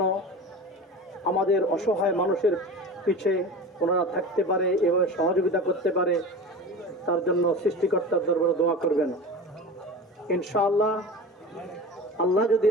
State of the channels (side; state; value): both; normal; correlation 0.32